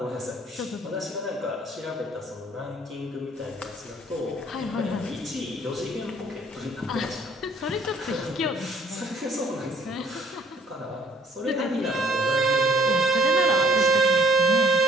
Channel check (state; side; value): normal; both; correlation 0.60